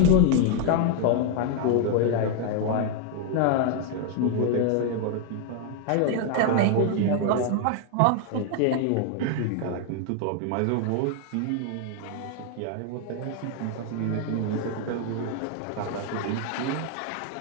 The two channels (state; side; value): different; both; correlation 0.00